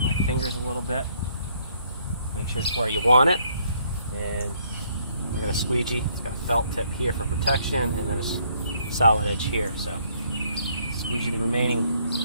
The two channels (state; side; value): inverted; both; correlation -0.67